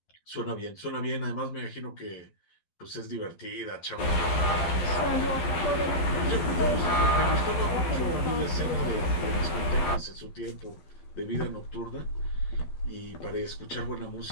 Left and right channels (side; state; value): right; late; 12 ms